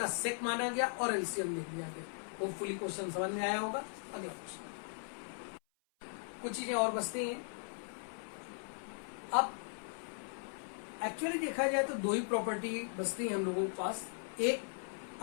सेक माना गया और एलसीएम ले लिया गया। होपफुली क्वेश्चन समझ में आया होगा। अगला क्वेश्चन, कुछ चीजें और बचती हैं। अब एक्चुअली देखा जाए तो 2 ही प्रॉपर्टी बचती है हम लोगों के पास। एक,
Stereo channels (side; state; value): right; silent; 52 dB below the other